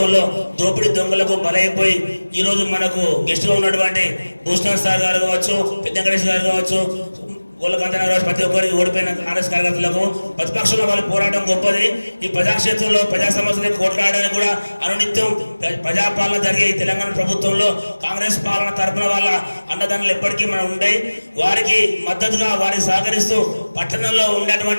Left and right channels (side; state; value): both; inverted; correlation -1.00